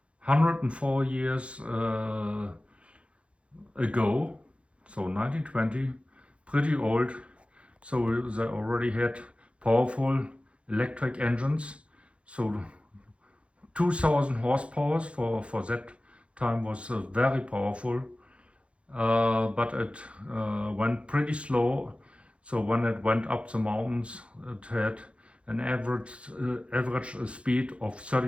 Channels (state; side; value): late; left; 0.060 ms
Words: 104 years ago, so 1920, pretty old, so they already had powerful electric engines, so 2000 horsepower for that time was very powerful, but it went pretty slow. So when it went up the mountains, it had an average speed of